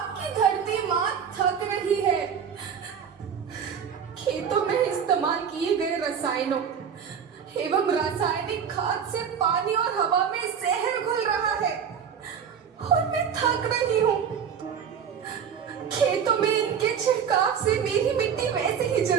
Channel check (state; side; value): quieter; left; 7.5 dB